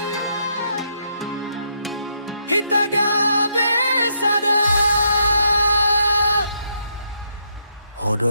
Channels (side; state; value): both; inverted; correlation -0.76